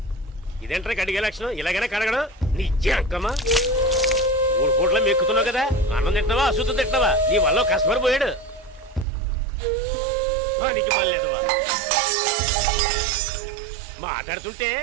ఇదేంట్రా కడిగే లక్షణం? ఇలాగైనా కడగడం నీ జంకమ్మా. 3 పూట్ల మెక్కుతున్నావు కదా, అన్నం తింటున్నావా అశుద్ధం తింటున్నావా? నీ వల్ల కస్టమర్ పోయాడు. నీకు మళ్ళేదవా మాట్లాడుతుంటే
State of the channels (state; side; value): drops out; left; at 9.1 s